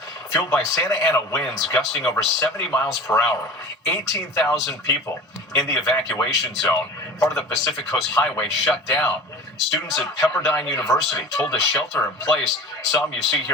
fueled by Santa Ana winds gusting over 70 miles per hour. 18,000 people in the evacuation zone. Part of the Pacific Coast Highway shut down. Students at Pepperdine University told to shelter in place. Some you see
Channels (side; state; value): both; normal; correlation 0.37